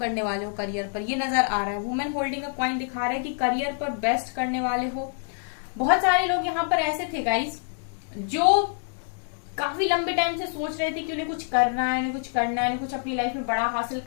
वाले हो करियर पर, ये नजर आ रहा है। वुमेन होल्डिंग अ कॉइन दिखा रहा है कि करियर पर बेस्ट करने वाले हो। बहुत सारे लोग यहाँ पर ऐसे थे गाइज जो काफी लंबे टाइम से सोच रहे थे कि उन्हें कुछ करना है, उन्हें कुछ करना है, उन्हें कुछ अपनी लाइफ में बड़ा हासिल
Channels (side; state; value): right; silent; 61 dB below the other